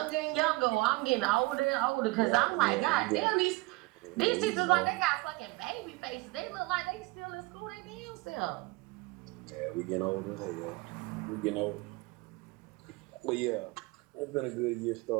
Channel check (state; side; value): quieter; left; 23.0 dB